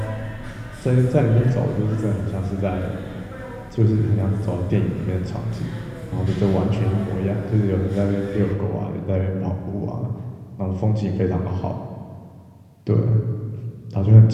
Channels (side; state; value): both; identical; correlation 1.00